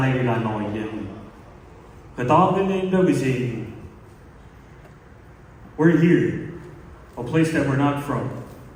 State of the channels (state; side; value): identical; both; correlation 1.00